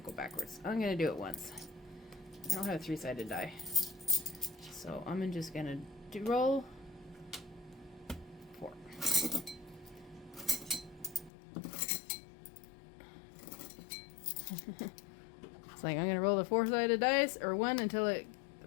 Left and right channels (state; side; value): drops out; right; at 11.3 s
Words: to go backwards. I'm going to do it once. I don't have a 3-sided die. So I'm just going to roll 4. It's like I'm going to roll the 4-sided dice, or 1 until the